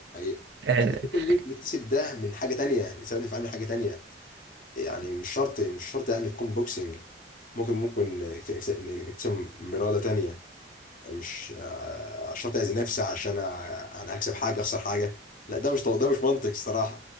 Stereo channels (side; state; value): both; normal; correlation 0.39